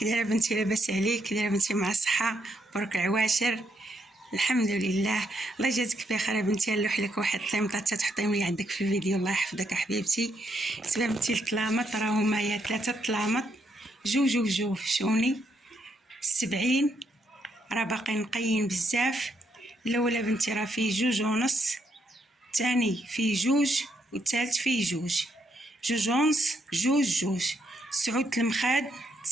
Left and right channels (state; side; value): normal; both; correlation 0.76